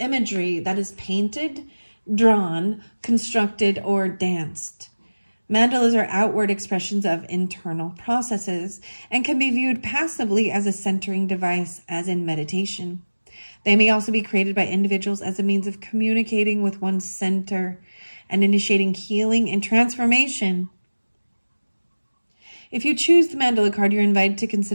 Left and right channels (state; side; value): inverted; both; correlation -1.00